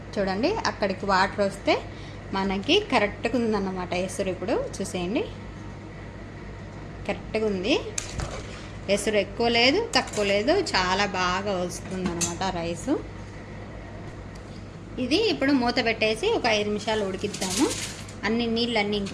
చూడండి అక్కడికి వాటర్ వస్తే మనకి కరెక్ట్గా ఉందన్నమాట ఎసరు. ఇప్పుడు చూసేయండి, కరెక్ట్గా ఉంది. ఎసరు ఎక్కువ లేదు, తక్కువ లేదు, చాలా బాగా వస్తుంది అన్నమాట రైసు. ఇది ఇప్పుడు మూత పెట్టేసి ఒక 5 నిమిషాలు ఉడికిద్దాము. అన్ని నీళ్ళన్నీ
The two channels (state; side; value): identical; both; correlation 1.00